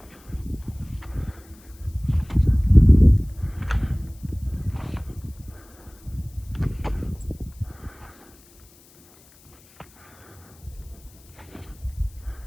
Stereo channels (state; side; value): noise; left; hiss, 27 dB below the sound